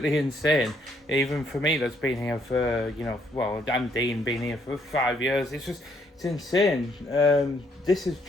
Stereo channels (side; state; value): both; normal; correlation 0.70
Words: insane. Even for me, that's been here for, and Dean been here for 5 years. It's insane. This has